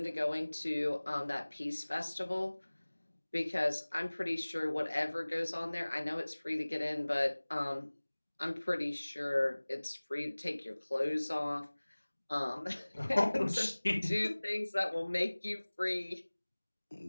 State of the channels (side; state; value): both; inverted; correlation -1.00